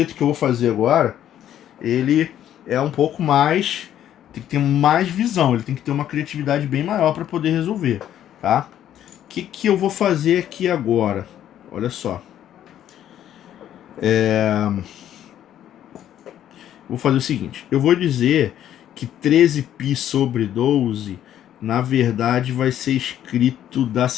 que eu vou fazer agora, ele é um pouco mais... tem que ter mais visão, ele tem que ter uma criatividade bem maior para poder resolver, tá? O que eu vou fazer aqui agora? Olha só. Vou fazer o seguinte, eu vou dizer que 13π sobre 12, na verdade, vai ser escrito da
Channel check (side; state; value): right; quieter; 11.1 dB